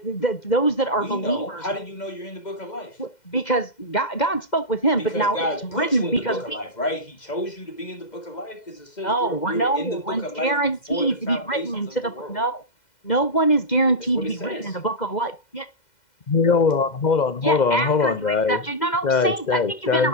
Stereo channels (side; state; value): right; late; 2.0 ms